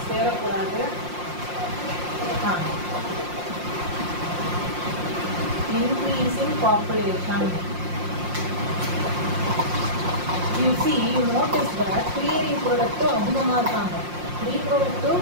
சேரக்கூடாது. Increasing population. You see, you notice that pre-reproductive அதிகமாக இருக்காங்க. ரீப்ரொடக்டிவ்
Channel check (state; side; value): late; left; 5.6 ms